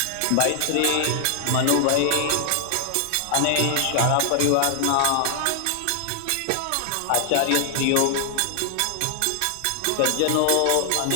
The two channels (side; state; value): both; different; correlation -0.01